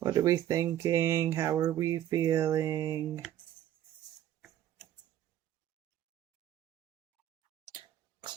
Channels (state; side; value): quieter; left; 11.9 dB